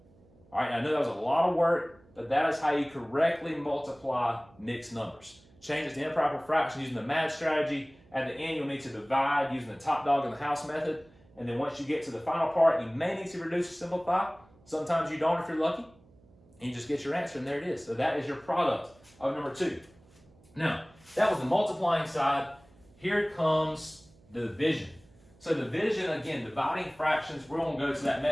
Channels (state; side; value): noise; right; hum, 28 dB below the sound